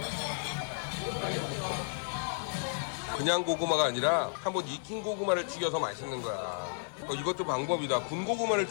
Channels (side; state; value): right; silent; 56 dB below the other